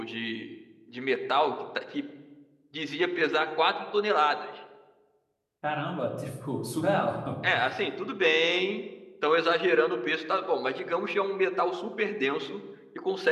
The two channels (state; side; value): identical; both; correlation 1.00